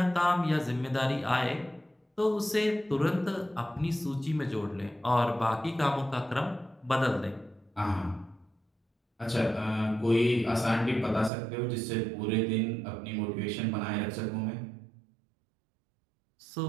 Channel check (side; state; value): left; drops out; at 11.3 s